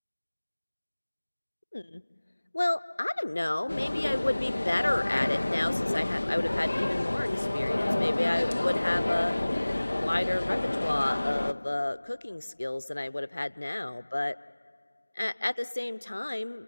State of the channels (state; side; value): inverted; both; correlation -1.00